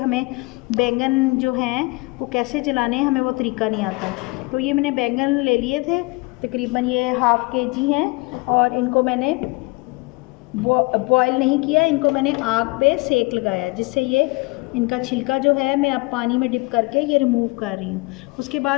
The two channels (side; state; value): right; quieter; 25.5 dB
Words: बैंगन जो हैं वो कैसे जलाने हैं, हमें वो तरीका नहीं आता। तो ये मैंने बैंगन ले लिए थे, तकरीबन ये हाफ़ kg हैं और इनको मैंने बॉयल नहीं किया, इनको मैंने आग पे सेक लगाया, जिससे ये इनका छिलका जो है मैं अब पानी में डिप करके ये रिमूव कर रही हूँ। उसके